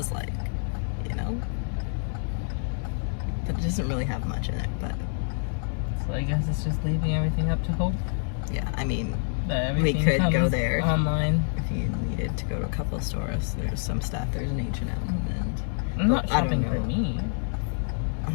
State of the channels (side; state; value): right; silent; 60 dB below the other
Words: like, you know? But it doesn't really have much in it, but So I guess it's just leaving everything up to hope. yeah, I mean, That we everything could go comes there online. if you needed to go to a couple of stores. There's some stuff. There's an H&M and I'm not I don't shopping for know. me. oh,